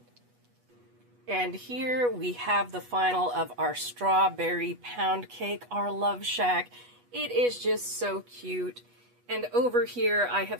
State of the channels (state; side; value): late; left; 8.2 ms